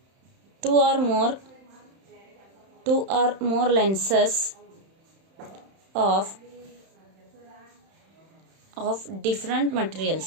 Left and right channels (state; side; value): late; left; 31 ms